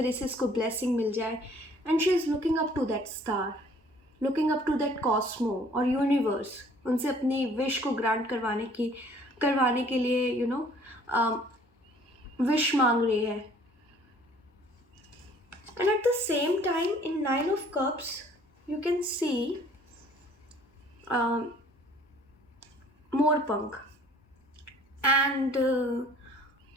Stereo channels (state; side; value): normal; both; correlation 0.56